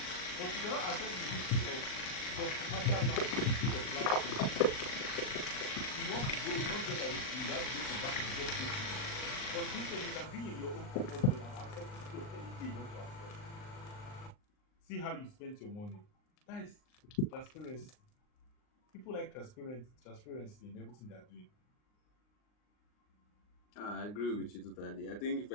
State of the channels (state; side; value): late; right; 39 ms